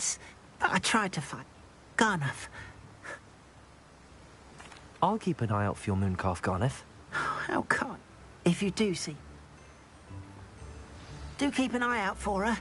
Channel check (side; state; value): both; identical; correlation 1.00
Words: But I tried to find Garnath. I'll keep an eye out for your mooncalf, Garneth. How kind. If you do see. Do keep an eye out for her,